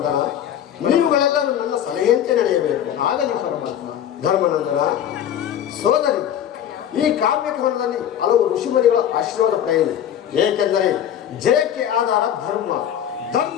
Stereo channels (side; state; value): right; quieter; 10.1 dB